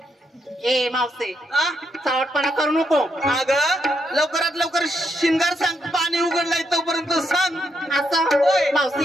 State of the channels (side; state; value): both; normal; correlation 0.79